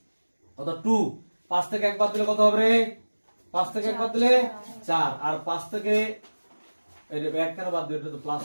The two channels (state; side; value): inverted; both; correlation -1.00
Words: কত? 2, 5 থেকে 1 বাদ দিলে কত হবে রে? 5 থেকে 1 বাদ দিলে 4, আর 5 থেকে এটা 1 কেন বাদ দিলে? এটা তো প্লাস